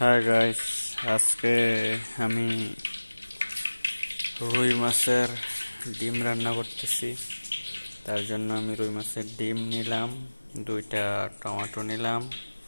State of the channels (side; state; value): both; inverted; correlation -1.00